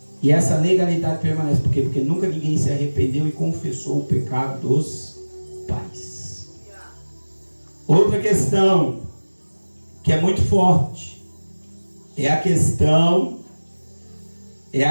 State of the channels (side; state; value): both; inverted; correlation -1.00